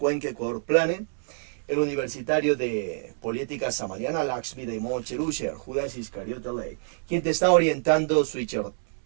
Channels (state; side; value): silent; left; 60 dB below the other